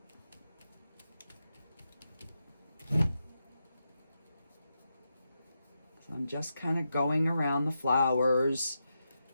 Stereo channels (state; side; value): inverted; both; correlation -0.87